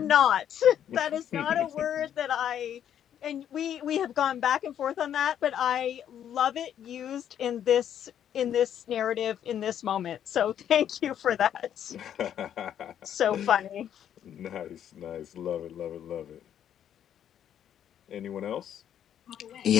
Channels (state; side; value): quieter; right; 9.8 dB